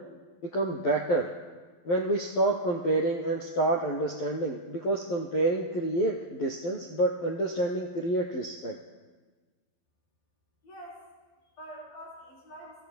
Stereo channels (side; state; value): right; late; 12 ms